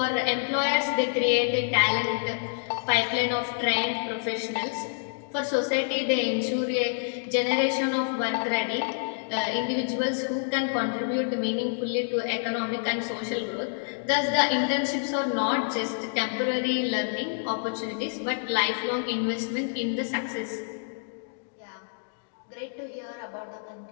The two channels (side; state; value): right; silent; digital silence